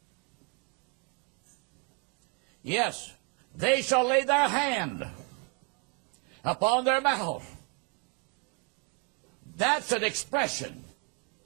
Yes, they shall lay their hand upon their mouth. That's an expression.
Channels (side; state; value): left; quieter; 31.5 dB